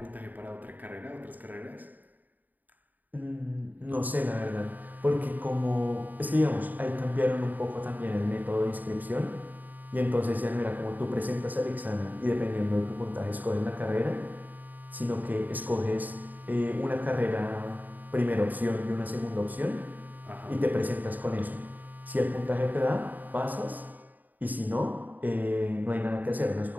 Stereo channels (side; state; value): left; late; 0.084 ms